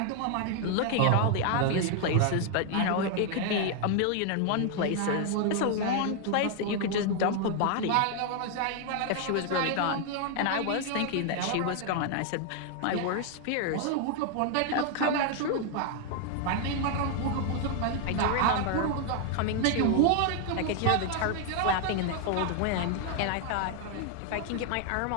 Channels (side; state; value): both; different; correlation 0.00